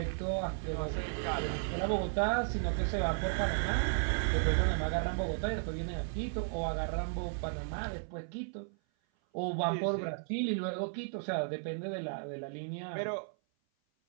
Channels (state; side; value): silent; left; 55 dB below the other